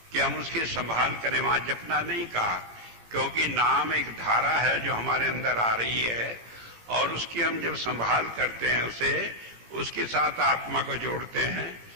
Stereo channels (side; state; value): left; late; 18 ms